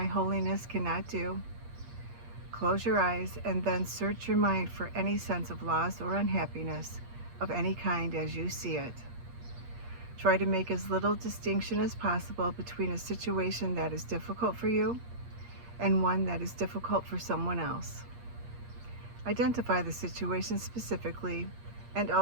holiness cannot do. Close your eyes and then search your mind for any sense of loss or unhappiness of any kind as you see it. Try to make as little distinction as possible between a situation that is difficult for you and one that is difficult for someone else. Identify the situation specifically and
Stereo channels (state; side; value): late; left; 8.5 ms